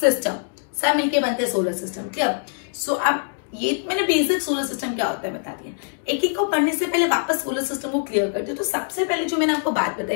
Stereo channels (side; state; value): right; silent; 63 dB below the other